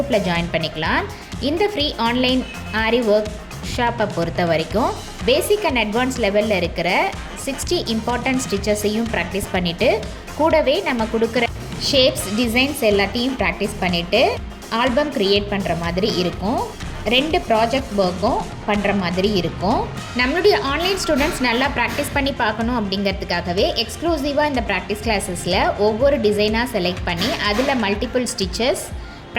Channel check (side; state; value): both; identical; correlation 1.00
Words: ஜாயின் பண்ணிக்கலாம். இந்த ஃப்ரீ ஆன்லைன் ஆரி ஒர்க் ஷாப்பை பொறுத்த வரைக்கும் பேசிக் அண்ட் அட்வான்ஸ் லெவலில் இருக்கிற 60 இம்பார்ட்டன்ட் ஸ்டிச்சஸையும் ப்ராக்டிஸ் பண்ணிவிட்டு கூடவே நம்ம கொடுக்குற ஷேப்ஸ் டிசைன்ஸ் எல்லாத்தையும் ப்ராக்டிஸ் பண்ணிவிட்டு ஆல்பம் க்ரியேட் பண்ணுற மாதிரி இருக்கும். 2 ப்ராஜெக்ட் ஒர்க்கும் பண்ணுற மாதிரி இருக்கும். நம்மளுடைய ஆன்லைன் ஸ்டூடெண்ட்ஸ் நல்லா ப்ராக்டிஸ் பண்ணி பார்க்கணும் அப்படிங்கிறதுக்காகவே எக்ஸ்க்ளூசிவாக இந்த ப்ராக்டிஸ் கிளாஸஸில் ஒவ்வொரு டிசைனாக செலக்ட் பண்ணி அதில் மல்டிபிள் ஸ்டிச்சஸ்